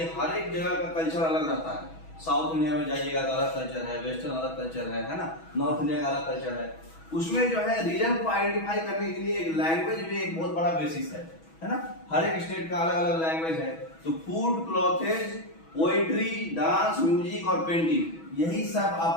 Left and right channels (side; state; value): right; late; 6.2 ms